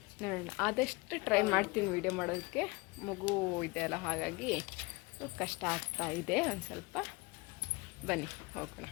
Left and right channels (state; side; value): quieter; right; 25.3 dB